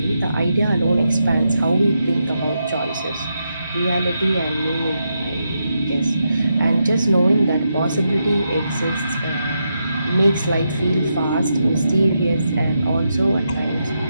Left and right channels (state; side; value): inverted; both; correlation -0.84